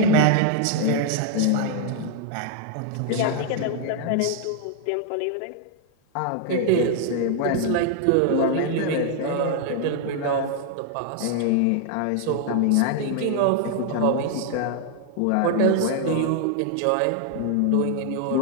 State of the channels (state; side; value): different; both; correlation 0.00